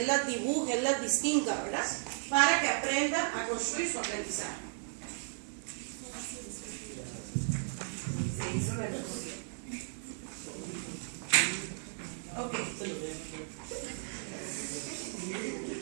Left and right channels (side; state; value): left; silent; 54 dB below the other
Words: las dibuje, él las distinga, ¿verdad? Para que aprenda a construir su aprendizaje. Ok.